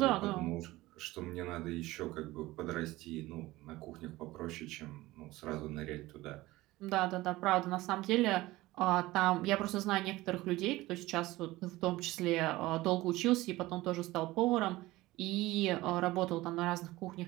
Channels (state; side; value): quieter; left; 18.5 dB